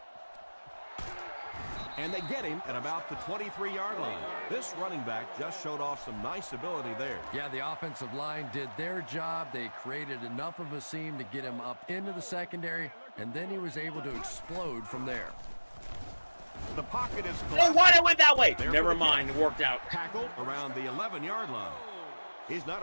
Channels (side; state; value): both; inverted; correlation -1.00